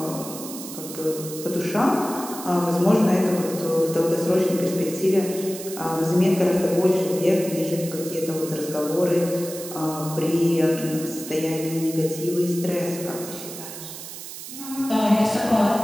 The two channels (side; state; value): right; noise; hiss, 11 dB below the sound